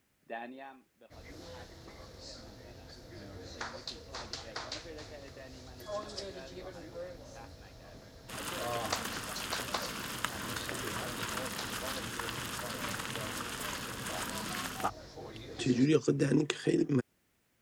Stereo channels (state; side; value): identical; both; correlation 1.00